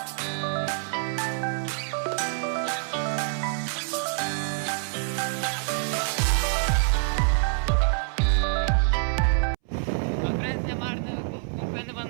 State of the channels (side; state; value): left; silent; 60 dB below the other